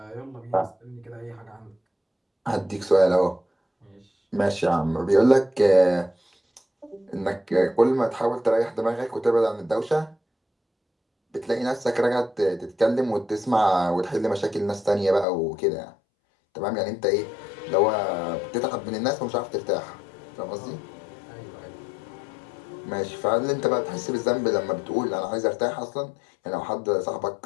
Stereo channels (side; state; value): right; drops out; at 15.2 s